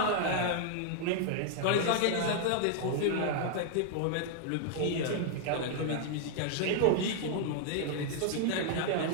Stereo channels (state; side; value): different; both; correlation 0.00